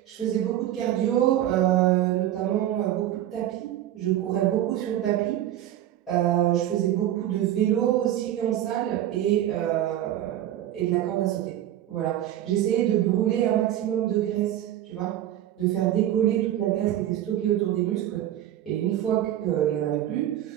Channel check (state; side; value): quieter; left; 12.4 dB